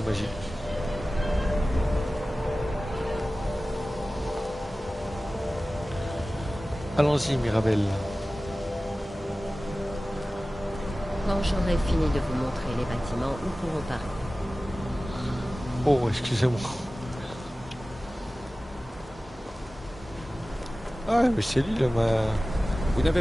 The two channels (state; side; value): normal; both; correlation 0.96